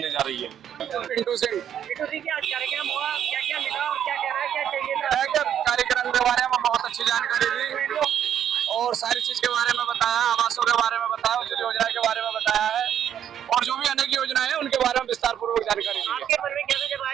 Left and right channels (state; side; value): quieter; left; 9.7 dB